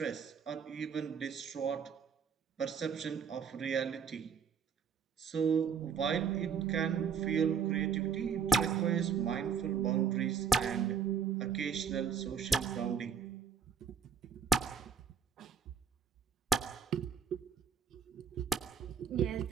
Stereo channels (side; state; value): left; quieter; 6.7 dB